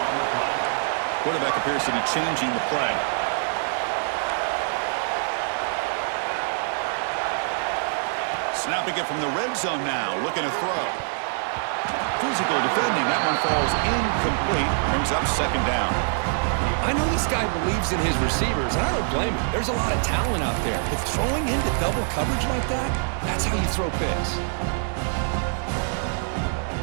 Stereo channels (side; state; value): left; silent; digital silence